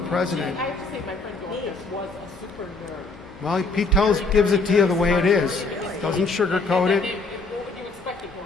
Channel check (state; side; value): quieter; right; 3.6 dB